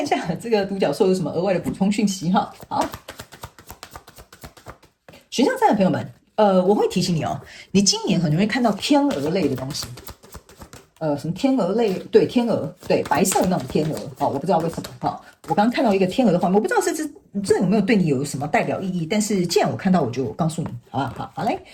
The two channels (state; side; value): identical; both; correlation 1.00